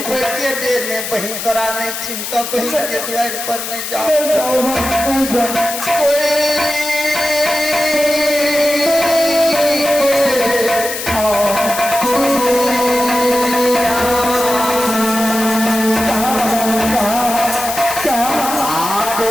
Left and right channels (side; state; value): left; noise; hiss, 6 dB below the sound